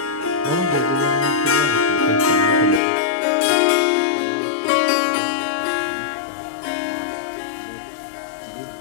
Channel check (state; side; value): drops out; right; at 2.8 s